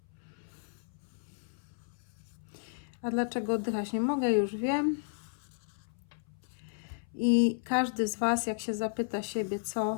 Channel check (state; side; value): silent; right; 56 dB below the other